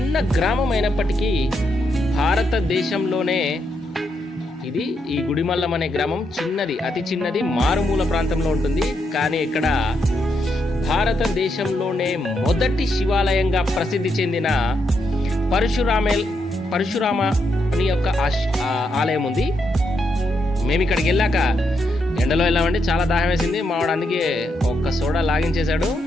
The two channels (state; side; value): normal; both; correlation 0.80